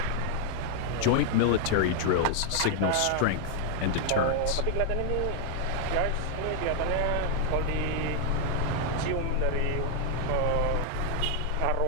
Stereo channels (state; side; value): different; both; correlation 0.00